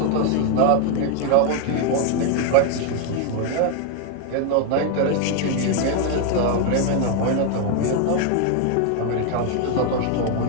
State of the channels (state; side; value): different; both; correlation 0.01